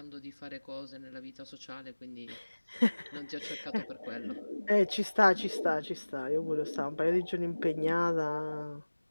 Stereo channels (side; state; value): both; inverted; correlation -1.00